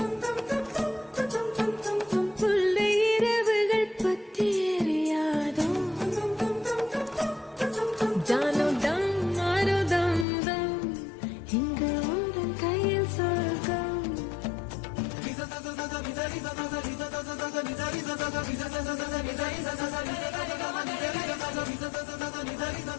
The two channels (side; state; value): right; drops out; at 10.2 s